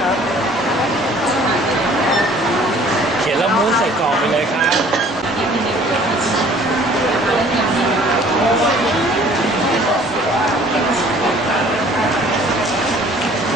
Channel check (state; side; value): normal; both; correlation 0.53